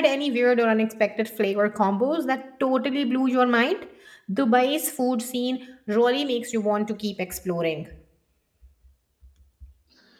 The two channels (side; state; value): both; identical; correlation 1.00